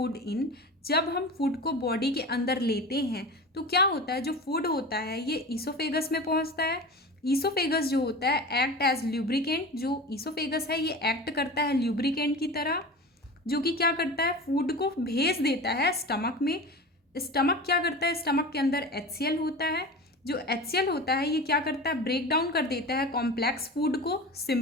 in, जब हम फूड को बॉडी के अंदर लेते हैं तो क्या होता है, जो फूड होता है ये ईसोफेगस में पहुँचता है। ईसोफेगस जो होता है एक्ट एज ल्यूब्रिकेंट, जो ईसोफेगस है ये एक्ट करता है ल्यूब्रिकेंट की तरह, जो कि क्या करता है, फूड को भेज देता है स्टमक में। स्टमक क्या करता है, स्टमक के अंदर HCl होता है, जो HCl होता है ये क्या करता है, ब्रेक डाउन कर देता है कॉम्प्लेक्स फूड को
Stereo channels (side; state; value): both; normal; correlation 0.32